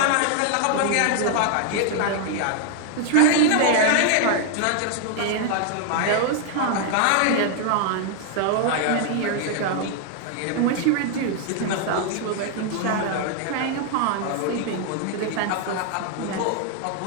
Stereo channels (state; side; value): different; both; correlation 0.00